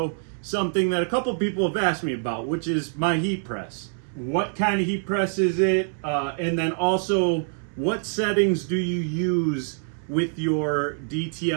something that a couple people have asked me about, which is my heat press. What kind of heat press is it? And then also, what settings do you use with your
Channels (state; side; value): silent; left; 62 dB below the other